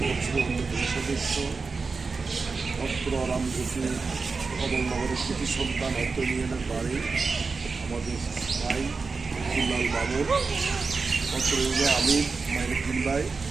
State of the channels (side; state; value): left; quieter; 4.4 dB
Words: পরিষদের অন্যতম সদস্য অত্র রামজ্যোতি কমলনগরের কৃতি সন্তান অত্র ইউনিয়নের বাড়ি আমাদের ভাই আব্দুল্লাল মামুন, অত্র ইউনিয়নের আমির মাইনুদ্দিন ভাই,